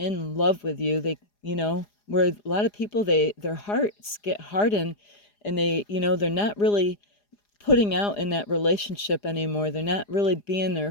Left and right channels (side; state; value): right; late; 4.9 ms